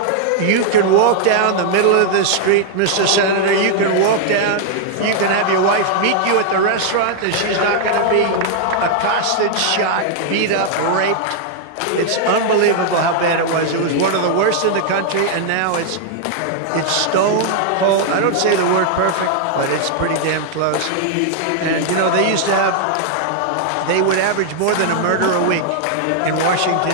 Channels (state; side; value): different; both; correlation 0.00